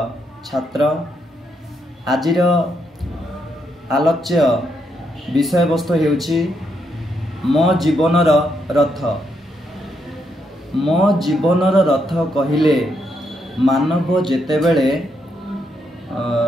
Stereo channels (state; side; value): normal; both; correlation 0.79